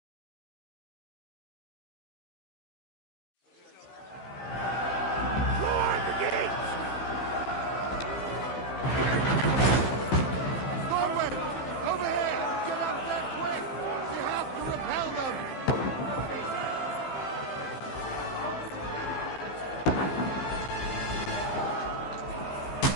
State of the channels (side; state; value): right; late; 15 ms